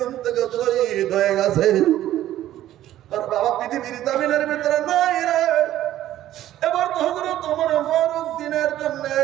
থেকে শহীদ হয়ে গেছে। তোর বাবা পৃথিবীর জমিনের ভিতরে নাই রে। এবার তো হযরত ওমর ফারুক দিনের জন্য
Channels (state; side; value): quieter; left; 13.2 dB